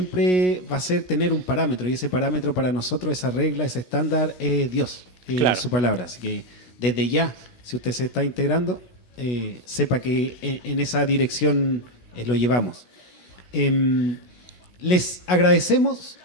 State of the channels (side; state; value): right; late; 16 ms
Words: va a ser tener un parámetro, y ese parámetro para nosotros, esa regla, ese estándar es Dios, claro, su palabra. Así que desde ya, si usted se está integrando, sepa que en esa dirección lo llevamos. Les agradecemos